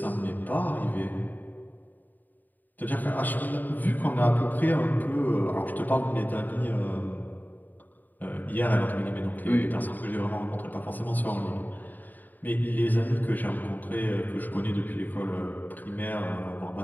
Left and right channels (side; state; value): right; late; 0.087 ms